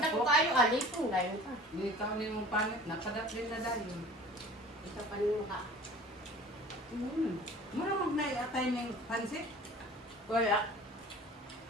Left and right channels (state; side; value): normal; both; correlation 0.44